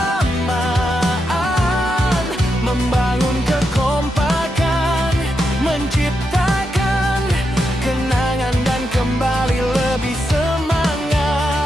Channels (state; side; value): normal; both; correlation 0.84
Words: membangun kekompakan, menciptakan kenangan dan kembali lebih